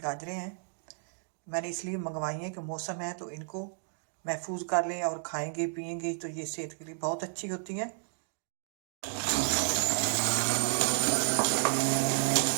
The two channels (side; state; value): left; silent; digital silence